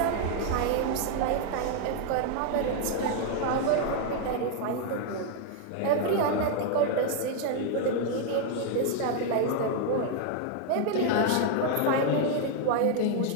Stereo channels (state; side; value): different; both; correlation 0.00